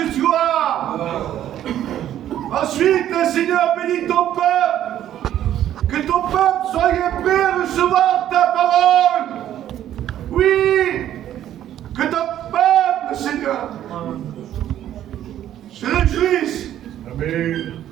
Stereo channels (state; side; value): quieter; left; 11.6 dB